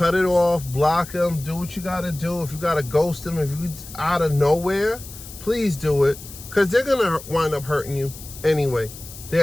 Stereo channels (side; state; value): left; noise; hiss, 15 dB below the sound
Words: it off, block them, do what you gotta do. If you gotta ghost them, if you out of nowhere, please do it, because they're gonna wind up hurting you anyway.